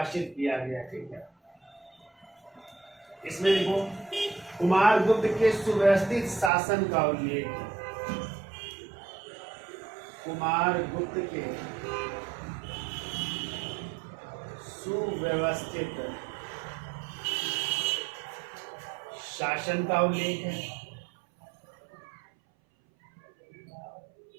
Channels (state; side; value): drops out; left; at 6.5 s